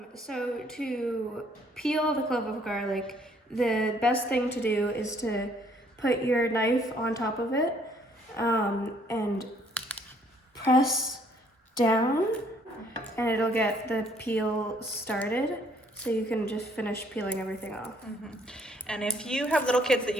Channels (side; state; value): both; normal; correlation 0.64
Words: So to peel the clove of garlic, the best thing to do is to put your knife on top of it and press down, and it'll get the peel started. So you can just finish peeling everything off. Mm-hmm. And if you have little kids that